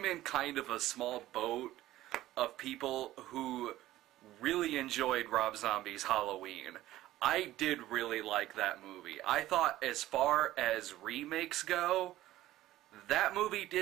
in kind of a small boat of people who really enjoyed Rob Zombie's Halloween. I did really like that movie. I thought as far as remakes go, that movie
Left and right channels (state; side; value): quieter; left; 15.2 dB